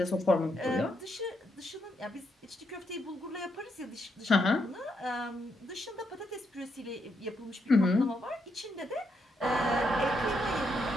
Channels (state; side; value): normal; both; correlation 0.79